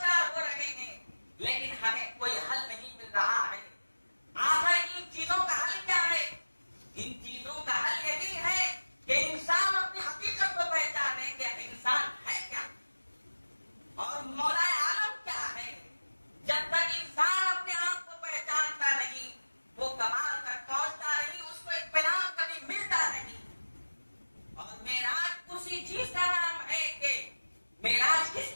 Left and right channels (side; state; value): both; inverted; correlation -1.00